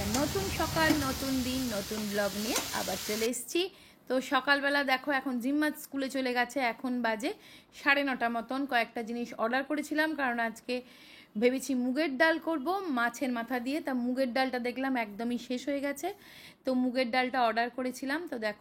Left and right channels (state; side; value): identical; both; correlation 1.00